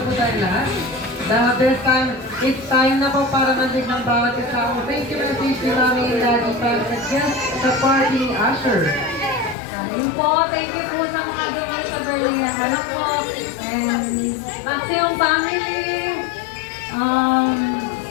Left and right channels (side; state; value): right; drops out; at 9.6 s